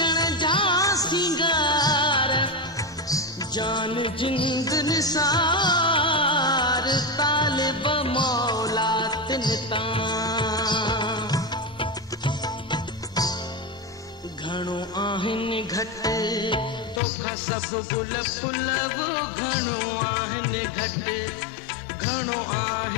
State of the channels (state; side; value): drops out; right; at 17.0 s